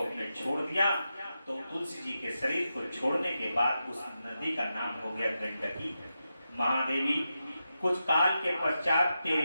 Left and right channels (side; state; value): both; inverted; correlation -0.89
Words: अपने छोड़ दिया, तो तुलसी जी के शरीर को छोड़ने के बाद उस नदी का नाम हो गया गंडकी। महादेवी, कुछ काल के पश्चात